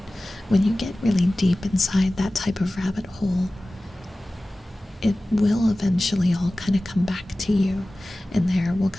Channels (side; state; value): both; normal; correlation 0.97